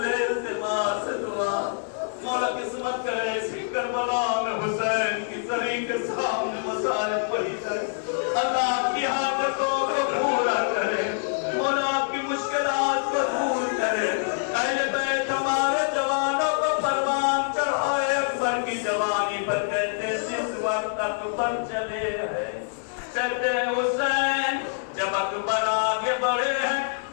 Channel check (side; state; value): right; silent; digital silence